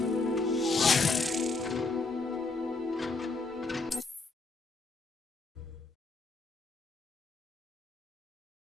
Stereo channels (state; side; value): quieter; right; 3.8 dB